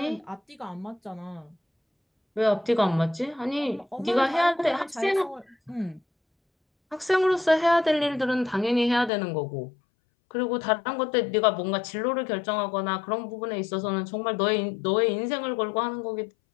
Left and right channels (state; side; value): drops out; right; at 9.1 s